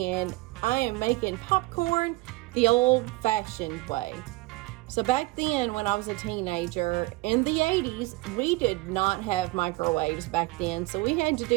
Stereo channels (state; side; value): quieter; left; 21.5 dB